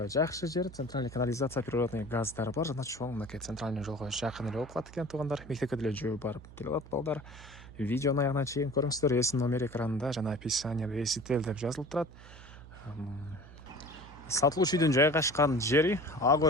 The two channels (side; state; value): right; noise; hum, 18 dB below the sound